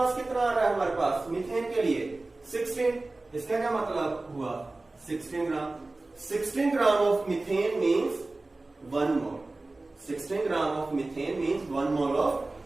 कितना आ रहा है हमारे पास मीथेन के लिए? 16। इसका क्या मतलब हुआ? 16 ग्राम। 16 gram of methane means 1 mole. 16 gram of methane means 1 mole of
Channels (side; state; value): left; quieter; 3.1 dB